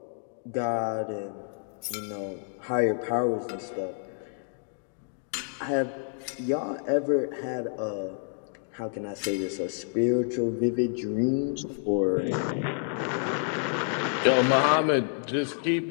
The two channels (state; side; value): silent; right; 59 dB below the other